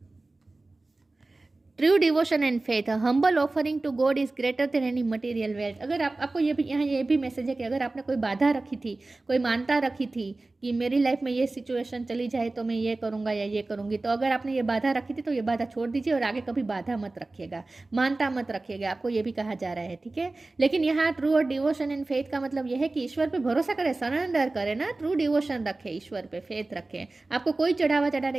True devotion and faith, humble offering to God is greater than any material wealth. अगर आपको ये भी यहाँ ये भी मैसेज है कि अगर आपने कोई बाधा रखी थी, कोई मानता रखी थी कि मेरी लाइफ में ये सिचुएशन चली जाए तो मैं ये करूँगा या ये करूँगी, तो अगर आपने ये बाधा रखी थी तो ये बाधा छोड़ दीजिए और आगे कभी बाधा मत रखिएगा, मानता मत रखिएगा। आपको ये भी कहा जा रहा है, ठीक है। लेकिन यहाँ ट्रू और डिवोशन एंड फेथ का मतलब यह है कि ईश्वर पे भरोसा करें, सरेंडर करें ना, ट्रू डिवोशन रखें, ईश्वर पे फेथ रखें। आपको कोई चढ़ावा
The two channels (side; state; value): left; quieter; 3.2 dB